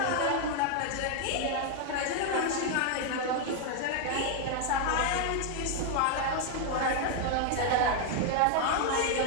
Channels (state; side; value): different; both; correlation 0.00